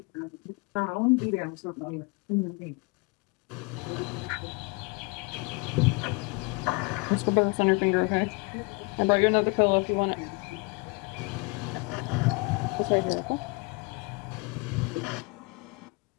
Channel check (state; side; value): quieter; right; 28.9 dB